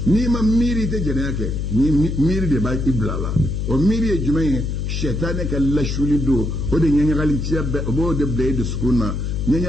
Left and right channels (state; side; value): noise; left; hum, 2 dB below the sound